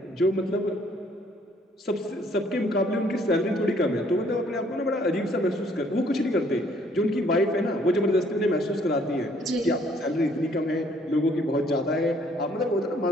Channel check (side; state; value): both; normal; correlation 0.63